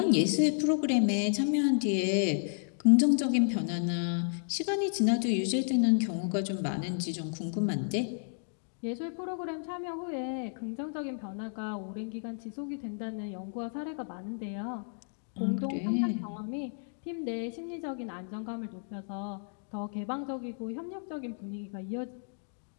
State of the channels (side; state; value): right; silent; digital silence